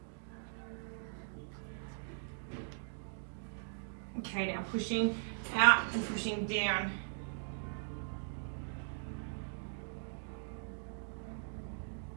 Okay, now pushing out and pushing down.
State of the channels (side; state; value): left; silent; digital silence